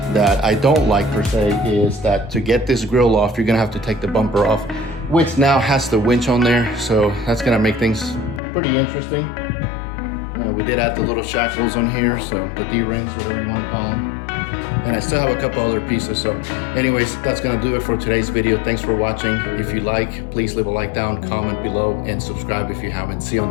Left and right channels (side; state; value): right; drops out; at 8.4 s